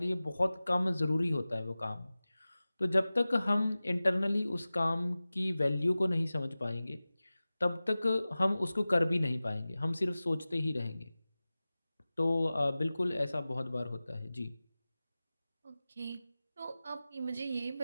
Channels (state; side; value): inverted; both; correlation -0.97